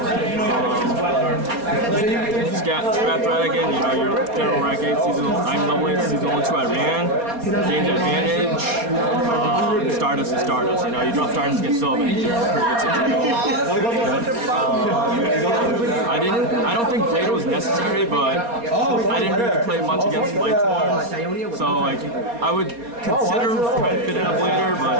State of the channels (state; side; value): late; left; 4.2 ms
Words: Scrap Dragon, you know, your general rank 8 season, I'm level 8 season 1 2 I ran, gained advantage. Stardust is Stardust, you know, you drop Stardust against Sylvan, you're in a pretty good situation. I don't think Blade was necessary, but I didn't really play much against Lightsworn, so like I would consider trying to fit in a Blader, but